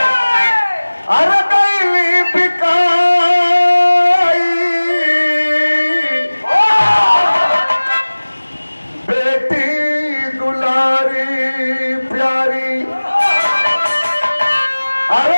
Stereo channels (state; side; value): inverted; both; correlation -1.00